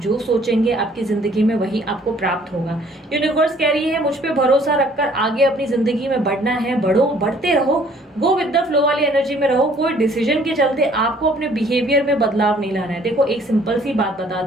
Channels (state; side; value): normal; both; correlation 0.58